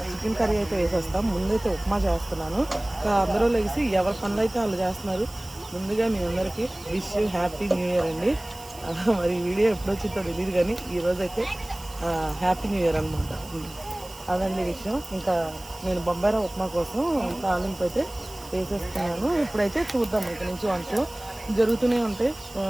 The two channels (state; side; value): noise; right; hiss, 18 dB below the sound